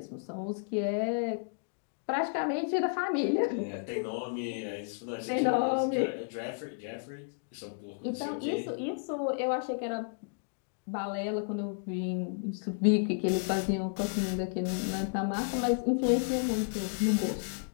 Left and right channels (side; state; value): right; silent; digital silence